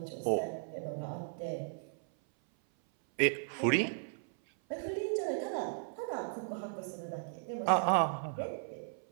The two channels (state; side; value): silent; left; 54 dB below the other